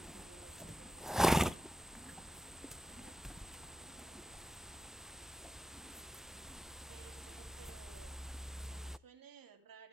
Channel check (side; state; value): both; normal; correlation 0.91